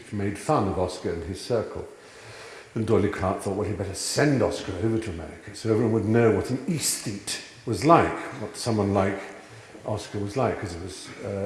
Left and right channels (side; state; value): both; identical; correlation 1.00